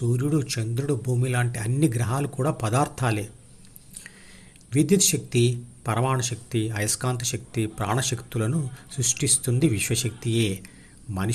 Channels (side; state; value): both; identical; correlation 1.00